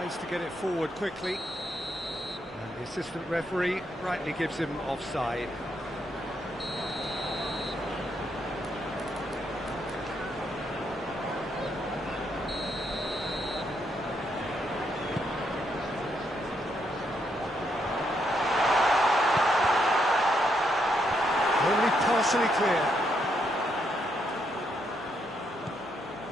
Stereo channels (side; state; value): both; normal; correlation 0.77